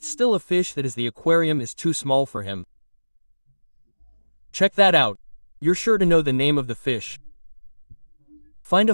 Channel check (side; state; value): both; inverted; correlation -1.00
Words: still a fish that is the aquarium is too small for him. Check that out. You're sure to know the name of the fish. Find a